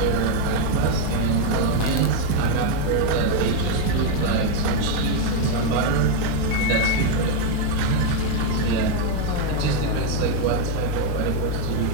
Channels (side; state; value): both; different; correlation 0.01